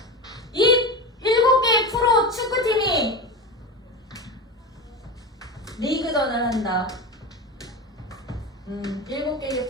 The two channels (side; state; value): both; normal; correlation 0.22